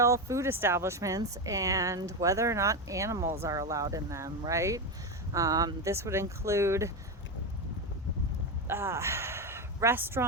food establishments and whether or not animals are allowed in them, right? This would include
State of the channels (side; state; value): both; normal; correlation 0.13